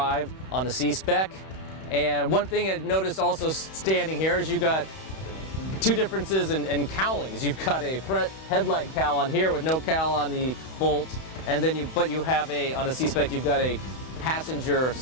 on the C-Spec. And one thing I noticed also standing here is you've got two differences in cowlings. You've got a front headlight cowl on here with no cowl on the Bolt, and then you have on a C-Spec you've got a passenger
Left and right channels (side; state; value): right; late; 31 ms